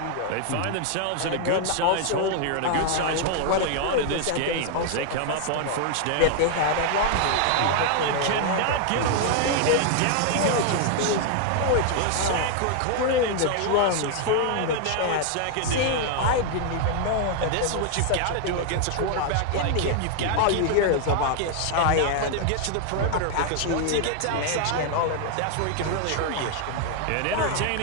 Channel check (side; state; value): both; different; correlation 0.00